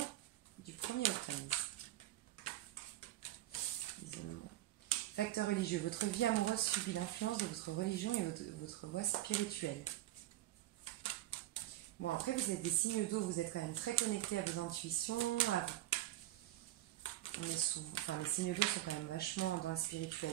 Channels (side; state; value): left; quieter; 15.0 dB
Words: du 1er au 15. Isolement. Facteur religieux. Votre vie amoureuse subit l'influence de votre religion et votre voie spirituelle. Bon, après, vous êtes des signes d'eau, vous êtes quand même très connectés à vos intuitions. Les signes d'eau sont quand même vachement dans la